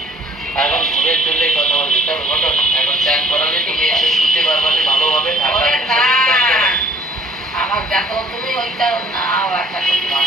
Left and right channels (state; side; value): normal; both; correlation 0.56